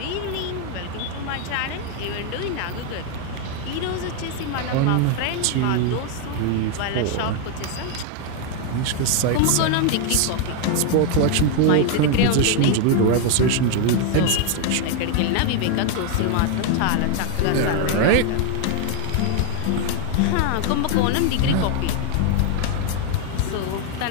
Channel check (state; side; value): different; both; correlation 0.01